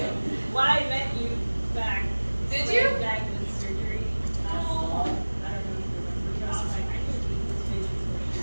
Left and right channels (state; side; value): inverted; both; correlation -1.00